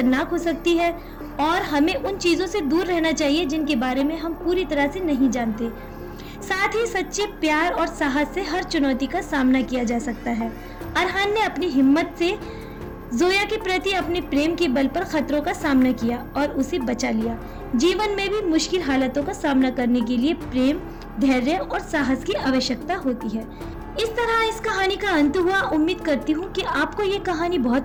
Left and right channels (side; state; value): both; identical; correlation 1.00